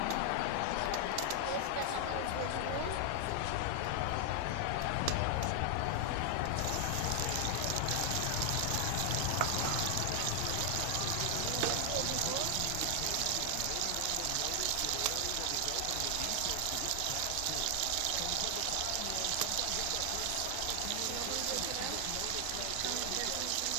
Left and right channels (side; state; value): both; different; correlation 0.00